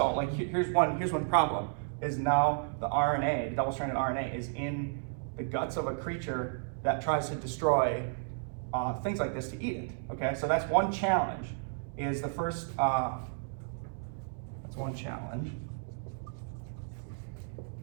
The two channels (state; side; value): silent; left; digital silence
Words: like here's one problem is now the RNA, the double-stranded RNA, is in the guts of a creature that tries to destroy things like this to eat it. Okay, so that's one challenge. Is the first that's one challenge.